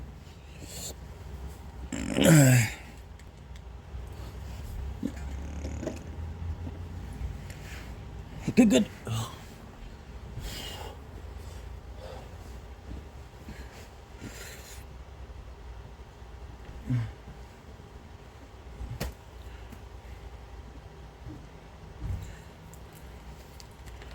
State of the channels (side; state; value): both; identical; correlation 1.00